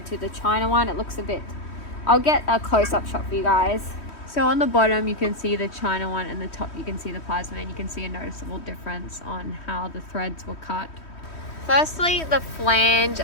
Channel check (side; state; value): right; late; 3.1 ms